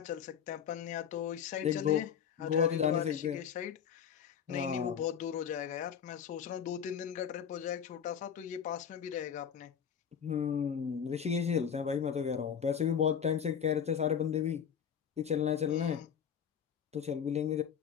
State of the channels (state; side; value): quieter; right; 8.1 dB